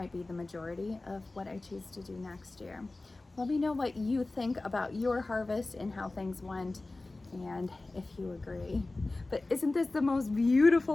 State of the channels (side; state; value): right; quieter; 3.1 dB